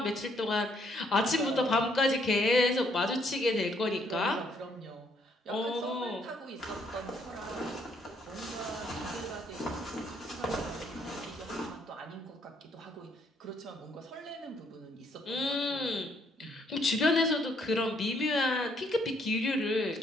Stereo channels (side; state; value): both; normal; correlation 0.69